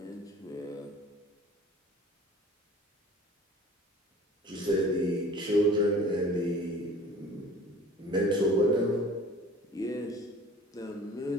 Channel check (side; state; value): both; normal; correlation 0.46